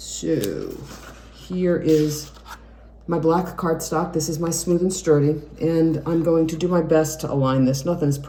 here is my black cardstock. This is my Smooth and Sturdy, and I'm going to do my best to align this. Nothing is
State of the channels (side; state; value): both; identical; correlation 1.00